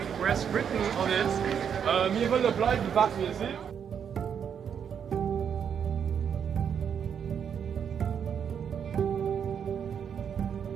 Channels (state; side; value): quieter; left; 7.8 dB